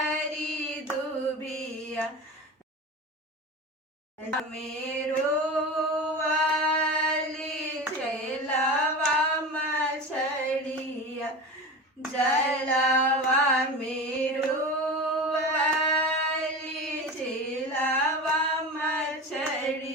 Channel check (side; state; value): both; normal; correlation 0.29